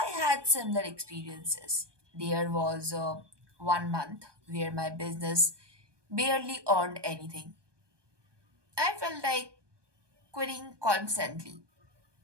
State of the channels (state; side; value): late; left; 1.2 ms